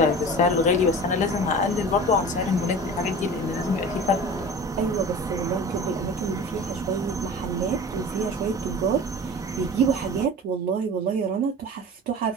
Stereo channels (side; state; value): both; normal; correlation 0.37